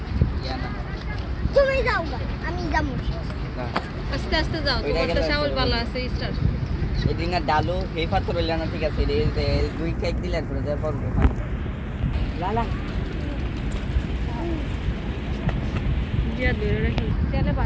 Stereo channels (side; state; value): both; identical; correlation 1.00